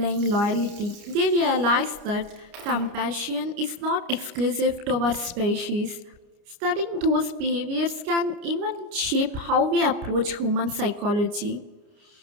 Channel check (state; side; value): late; left; 29 ms